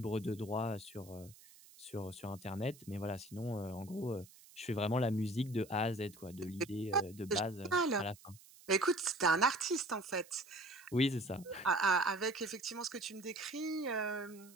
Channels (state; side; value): noise; right; hiss, 22 dB below the sound